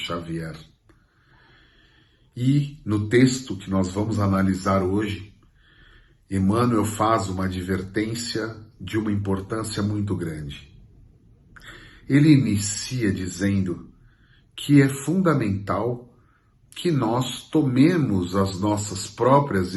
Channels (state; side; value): identical; both; correlation 1.00